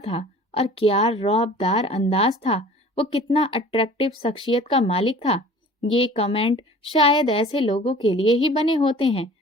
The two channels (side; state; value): both; normal; correlation 0.46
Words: और क्या रौबदार अंदाज था। वो कितना अट्रैक्टिव शख्सियत का मालिक था। ये कमेंट शायद ऐसे लोगों के लिए ही बने होते हैं